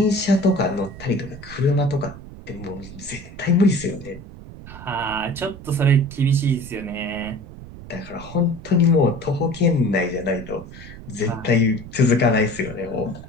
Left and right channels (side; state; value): right; noise; rumble, 15 dB below the sound